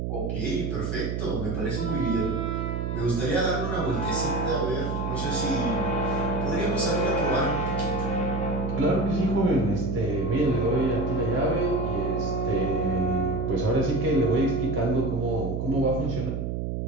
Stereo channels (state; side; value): noise; right; hum, 2 dB below the sound